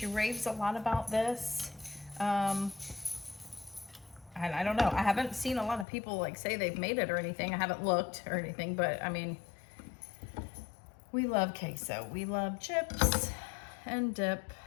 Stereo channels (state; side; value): drops out; right; at 5.9 s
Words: raves a lot about this. And I don't know, I haven't seen a lot of people like say they've made it or anything. I haven't looked or anything, but I mean, we love queso. We love chips and dip